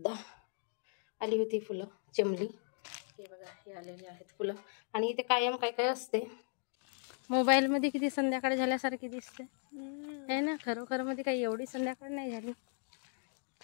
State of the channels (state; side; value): silent; right; 53 dB below the other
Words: आली होती फुलं, चेमली, हे बघा हे आलेले आहेत फुलं. आणि इथे कायम काय काय असते. मोबाईलमध्ये किती संध्याकाळ झाल्यासारखी दिसते आहे ना, खरोखर मध्ये काही एवढी संध्याकाळ नाही झाली.